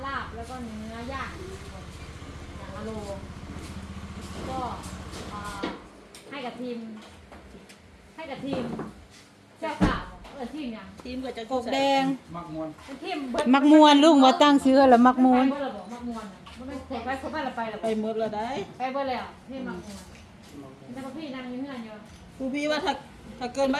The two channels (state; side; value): identical; both; correlation 1.00